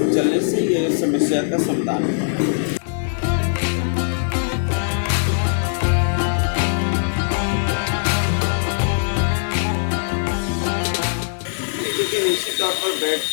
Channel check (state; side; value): silent; right; digital silence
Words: चलने से ये समस्या का समाधान है। निश्चित तौर पर बेड